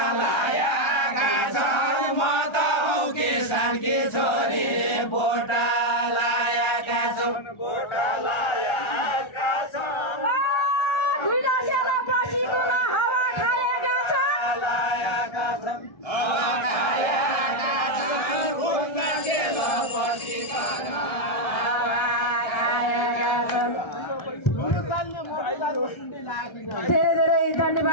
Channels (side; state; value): right; late; 1.3 ms